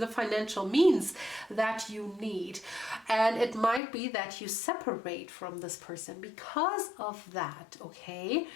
financial means that you need, and it might be that you separate from this person because of that. Okay,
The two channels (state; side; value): drops out; right; at 3.8 s